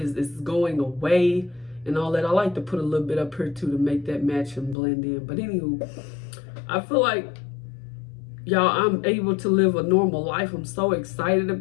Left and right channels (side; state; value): right; drops out; at 4.8 s